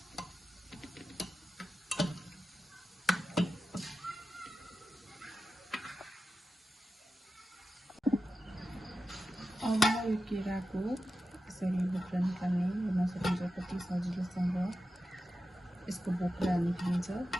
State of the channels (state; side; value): normal; both; correlation 0.91